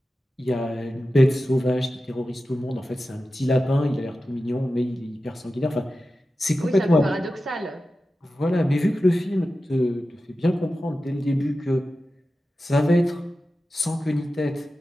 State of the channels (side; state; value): both; normal; correlation 0.93